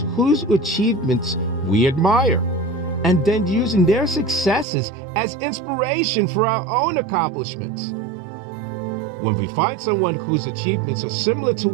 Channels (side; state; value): left; drops out; at 4.7 s